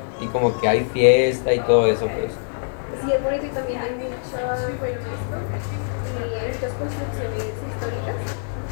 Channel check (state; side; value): silent; right; 63 dB below the other